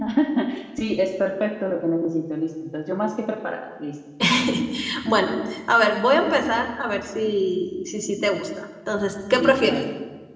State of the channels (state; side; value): identical; both; correlation 1.00